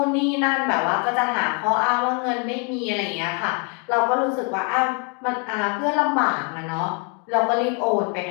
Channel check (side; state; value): right; quieter; 36.2 dB